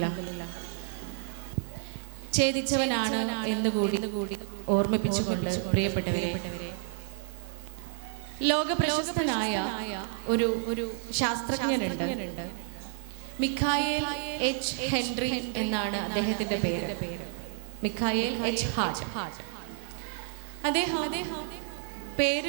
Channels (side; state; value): left; silent; 56 dB below the other